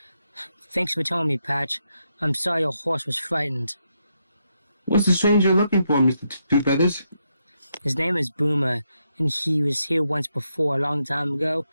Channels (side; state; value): both; inverted; correlation -0.81